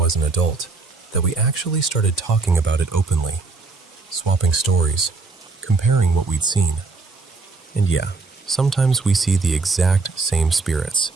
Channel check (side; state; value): left; quieter; 4.0 dB